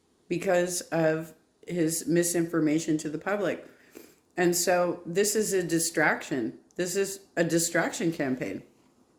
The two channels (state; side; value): identical; both; correlation 1.00